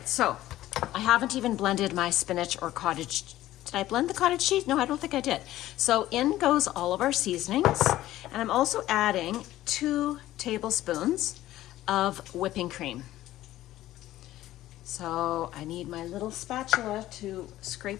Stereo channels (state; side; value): quieter; right; 14.8 dB